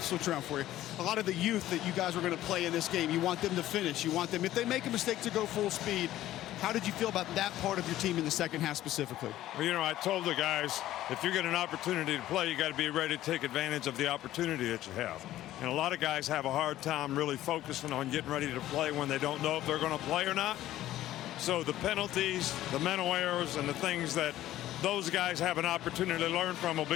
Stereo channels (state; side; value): quieter; right; 14.0 dB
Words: switch around for you. A lot of the youth that you guys were going to play in this game, you want them to finish. You want them, if they make a mistake, to go full speed. How did you feel about that part of your team in the second half specifically? Well, you know, I told the guys, if you get an opportunity to play, you got to be ready to take advantage of the opportunity that you have. And a lot of guys have a hard time really focusing on getting ready to play when they don't know if they're going to play or not. So the penalties, the mental errors, and the things that those guys have an opportunity to learn from will